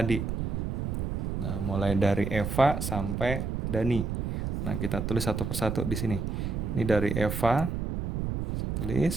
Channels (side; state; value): right; noise; rumble, 2 dB below the sound